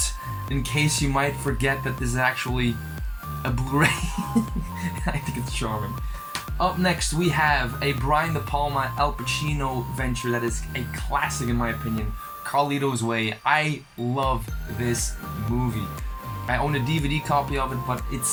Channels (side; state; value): both; identical; correlation 1.00